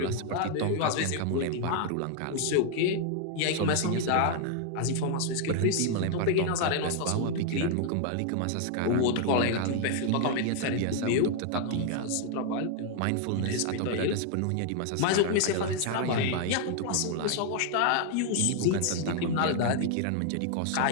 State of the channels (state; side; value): different; both; correlation 0.00